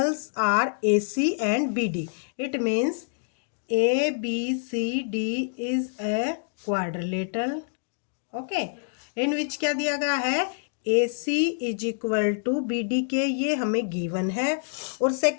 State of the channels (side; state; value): right; silent; digital silence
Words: are A C and B D. It means A B C D is a quadrilateral. Okay, in which क्या दिया गया है, A C is equal to B D के, ये हमें गिवन है। और